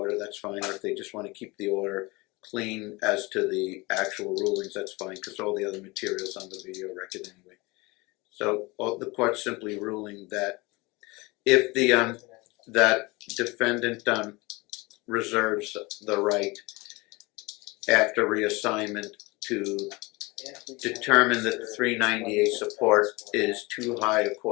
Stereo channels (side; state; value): right; quieter; 24.4 dB